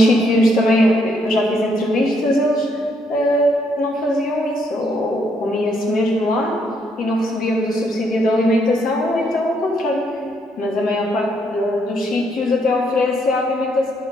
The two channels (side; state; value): both; normal; correlation 0.73